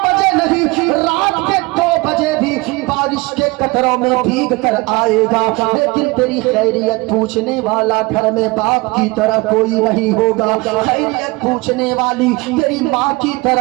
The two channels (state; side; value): quieter; left; 24.4 dB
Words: بجے نہیں، رات کے 2 بجے بھی بارش کے قطروں میں بھیگ کر آئے گا، لیکن تیری خیریت پوچھنے والا گھر میں باپ کی طرح کوئی نہیں ہوگا، خیریت پوچھنے والی تیری ماں کی